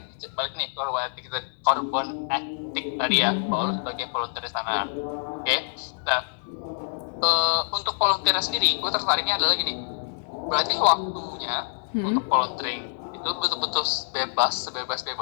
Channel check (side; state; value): right; silent; digital silence